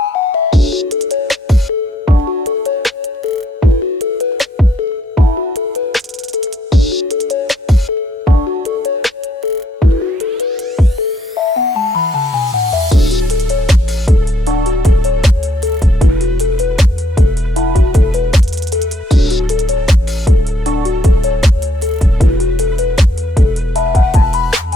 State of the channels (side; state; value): both; normal; correlation 0.69